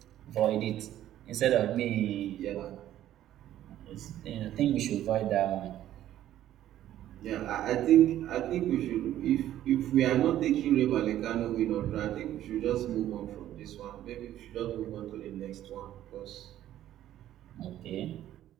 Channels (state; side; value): quieter; left; 12.5 dB